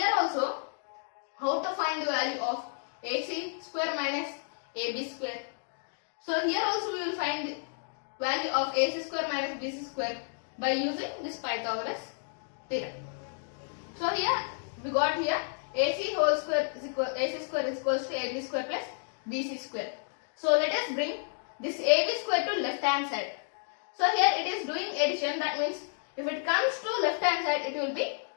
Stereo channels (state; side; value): silent; right; 57 dB below the other